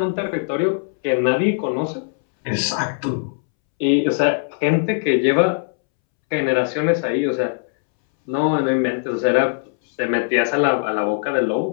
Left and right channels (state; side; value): silent; right; 66 dB below the other